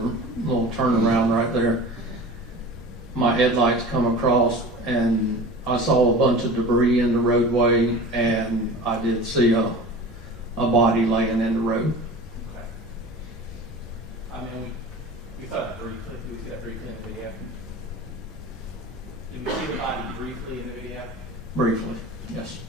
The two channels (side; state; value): both; normal; correlation 0.36